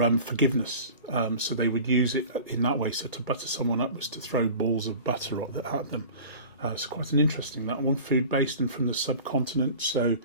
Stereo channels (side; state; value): both; inverted; correlation -0.40